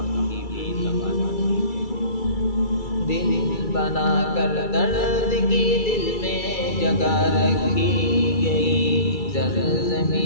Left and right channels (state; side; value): late; right; 2.3 ms